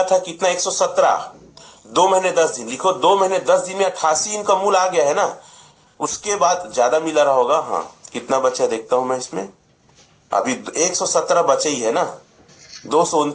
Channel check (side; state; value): both; identical; correlation 1.00